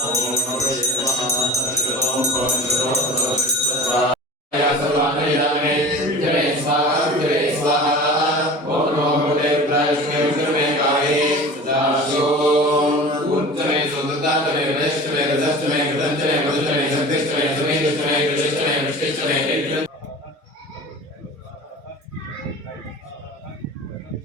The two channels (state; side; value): normal; both; correlation 0.37